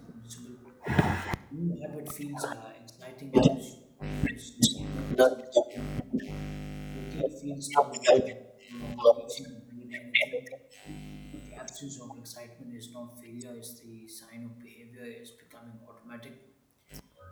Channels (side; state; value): both; identical; correlation 1.00